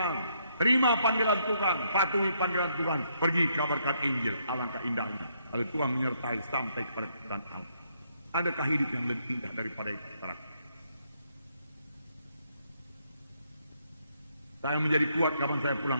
terima panggilan Tuhan, patuhi panggilan Tuhan, pergi kabarkan Injil. Alangkah indahnya kalau Tuhan menyertai sampai kepada kebenaran Allah. Adakah hidup yang lebih indah daripada itu? Saya menjadi kuat kapan saya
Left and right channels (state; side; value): inverted; both; correlation -0.73